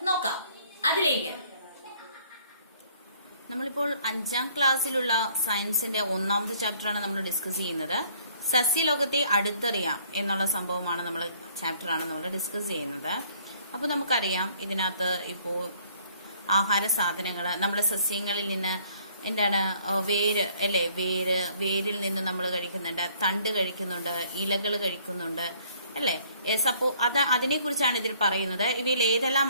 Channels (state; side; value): inverted; both; correlation -0.60